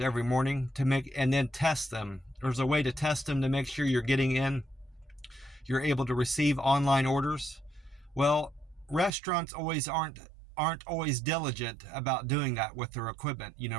every morning and then test them. There's a way to test them to make sure you're able to receive online orders. Well, restaurants aren't always diligent about doing that with their equipment,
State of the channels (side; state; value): left; drops out; at 9.1 s